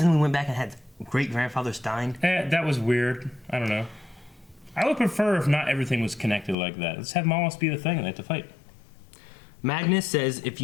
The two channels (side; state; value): right; drops out; at 6.6 s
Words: we went back and had great-grandfather Stein? That was weird. I don't know. I would prefer if not everything was connected like that. Let's have Mollis be the thing and they have to fight. Magnus says, if